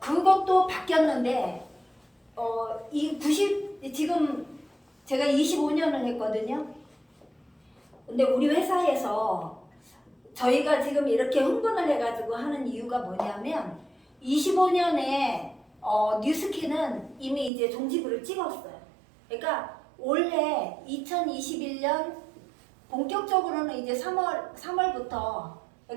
바뀌었는데 지금 제가 25년을 했거든요. 근데 우리 회사에서 저희가 지금 이렇게 흥분을 해가지고 하는 이유가 뭐냐면 25년에 뉴스킨은 이미 이제 종지부를 찍었어요. 그러니까 올해 2021년 본격적으로는 이제 3월부터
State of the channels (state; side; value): drops out; left; at 17.5 s